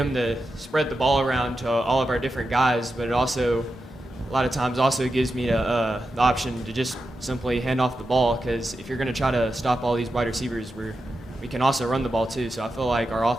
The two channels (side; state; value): both; normal; correlation 0.89